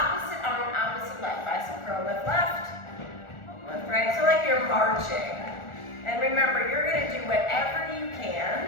arm, opposite leg. Bicep curl, lift left, lift right. So like you're marching. And remember, you're going to do whatever you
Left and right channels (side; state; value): right; late; 1.4 ms